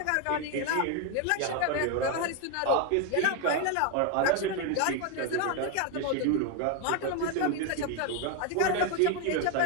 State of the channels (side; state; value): both; different; correlation 0.01